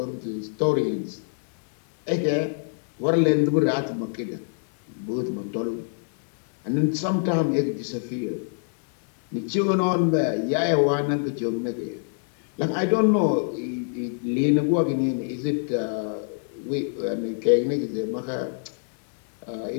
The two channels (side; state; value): right; silent; digital silence